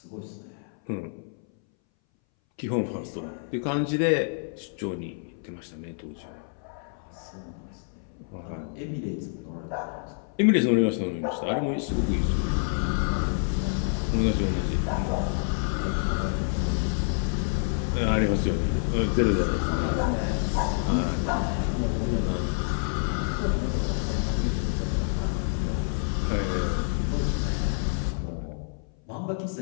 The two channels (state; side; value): silent; right; 60 dB below the other